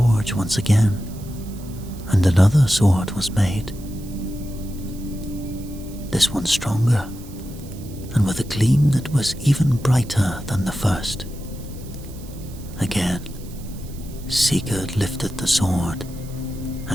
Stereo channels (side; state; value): right; noise; hiss, 21 dB below the sound